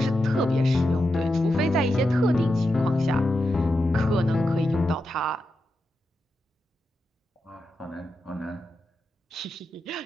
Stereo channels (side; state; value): both; normal; correlation 0.88